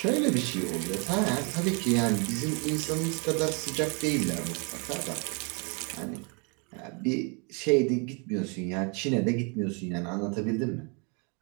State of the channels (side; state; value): left; quieter; 34.0 dB